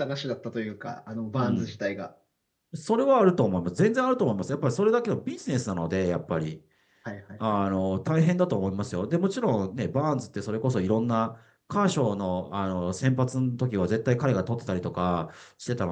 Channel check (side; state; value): both; identical; correlation 1.00